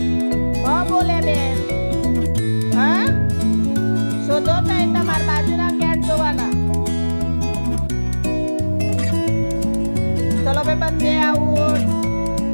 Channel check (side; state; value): both; inverted; correlation -1.00